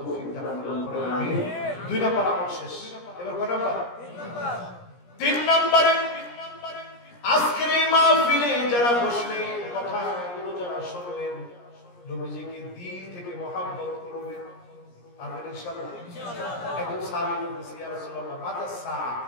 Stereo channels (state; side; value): late; right; 17 ms